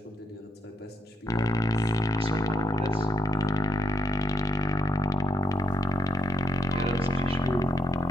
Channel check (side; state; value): both; normal; correlation 0.78